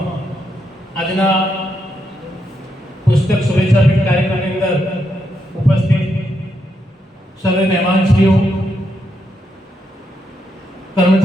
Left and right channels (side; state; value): both; normal; correlation 0.81